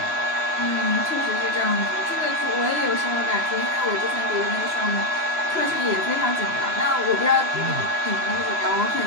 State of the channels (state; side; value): late; left; 3.0 ms